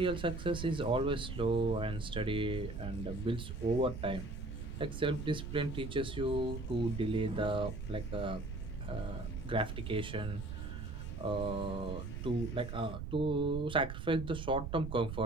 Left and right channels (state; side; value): noise; right; rumble, 6 dB below the sound